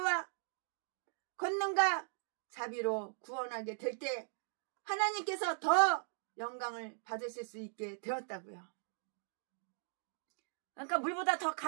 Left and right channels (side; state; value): left; silent; digital silence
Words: 권능과 자비로 구원하게 될 때 하나님께서 더 영광을 받으실 수 있게 되었다고요. 그러니까 물보다 더